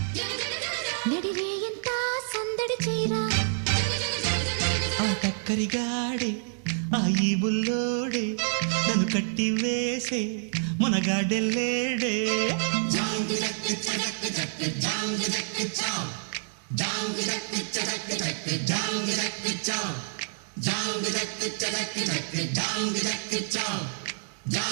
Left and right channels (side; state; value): left; silent; digital silence